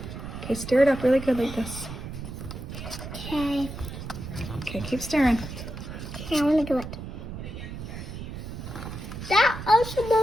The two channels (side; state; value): right; noise; rumble, 9 dB below the sound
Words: Okay, stir it up really good like this. Okay. Okay, keep stirring. Okay, I want to do it. That also